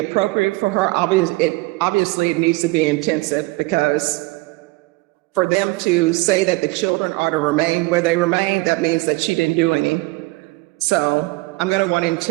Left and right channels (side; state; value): left; quieter; 23.3 dB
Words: for her. Obviously, it needs to be intensive, because for them to say that the children are to remain where they remain, that means that she didn't do any. So I'm going to want